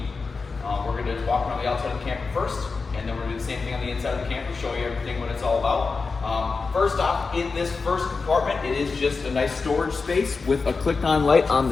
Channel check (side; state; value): right; quieter; 4.4 dB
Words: We're going to walk around the outside of the camper first, and then we're going to do the same thing on the inside of the camper, show you everything what it's all about. First off, in this first compartment, it is just a nice storage space with a click-on light on